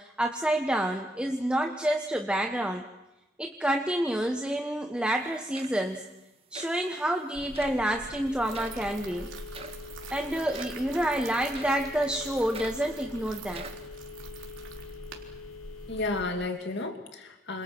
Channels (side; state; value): both; normal; correlation 0.77